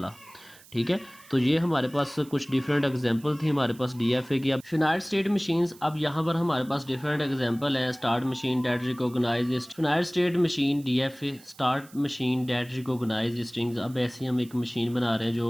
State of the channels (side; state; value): right; noise; hiss, 23 dB below the sound